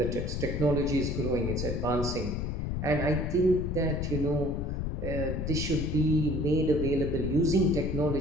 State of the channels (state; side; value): noise; left; rumble, 2 dB below the sound